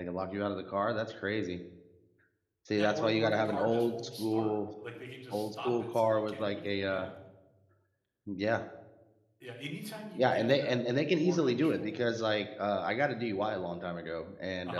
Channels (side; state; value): both; identical; correlation 1.00